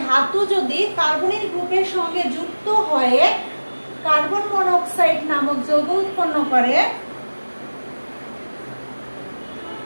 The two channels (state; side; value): inverted; both; correlation -1.00